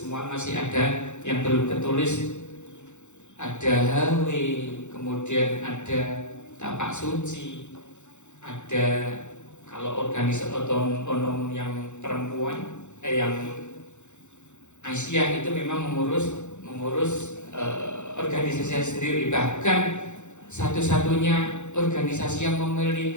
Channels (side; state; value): right; late; 0.83 ms